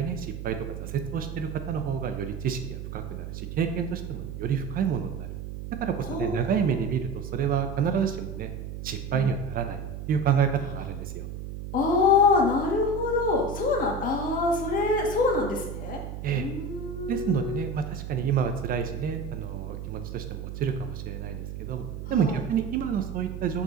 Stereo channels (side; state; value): right; noise; hum, 8 dB below the sound